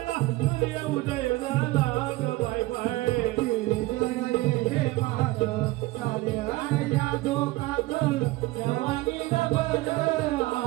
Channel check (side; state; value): left; quieter; 19.4 dB